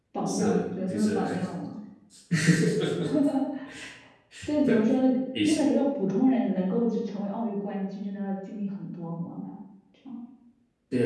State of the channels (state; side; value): identical; both; correlation 1.00